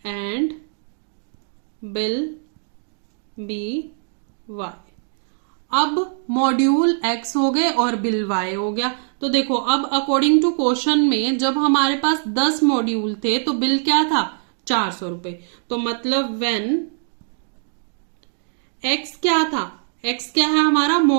and bill be y. अब मॉड्यूल एक्स हो गए और बिल वाई हो गया। तो देखो अब अकॉर्डिंग टू क्वेश्चन में जब हमारे पास 10 मॉड्यूल थे तो बिल क्या था, 400 रुपए। तो मतलब व्हेन एक्स क्या था, एक्स क्या है हमारा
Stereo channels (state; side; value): silent; left; digital silence